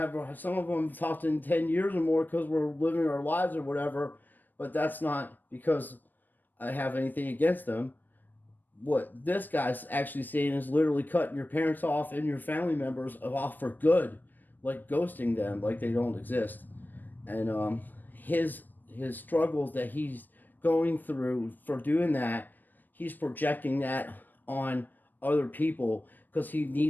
some of them talked in 10 years or more because we're living our lives or whatever. But that's not because I have anything against them. What this guy's actually saying is literally cutting your parents off and your family members off for good, like ghosting them, like they don't exist. And his struggles that he's going through for doing that, he's projecting that on other people because he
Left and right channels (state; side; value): late; right; 0.086 ms